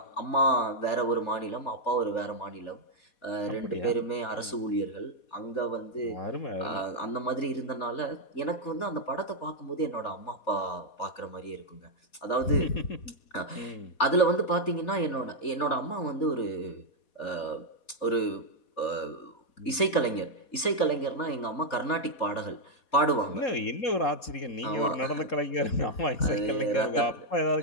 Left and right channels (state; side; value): late; right; 3.4 ms